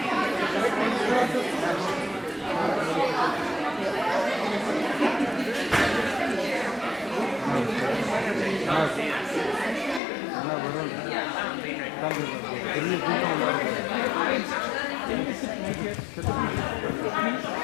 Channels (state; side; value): drops out; right; at 10.0 s